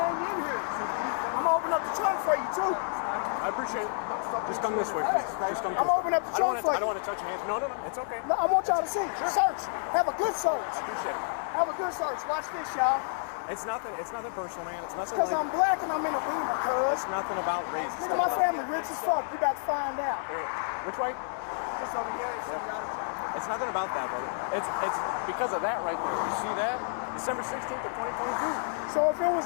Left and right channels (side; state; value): right; silent; digital silence